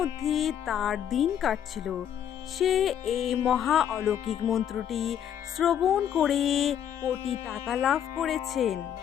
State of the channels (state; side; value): quieter; right; 9.6 dB